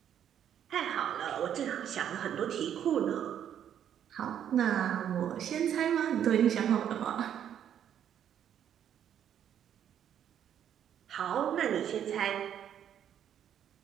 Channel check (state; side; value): quieter; left; 9.6 dB